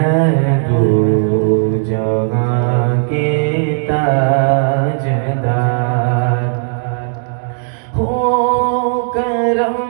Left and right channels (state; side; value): silent; left; digital silence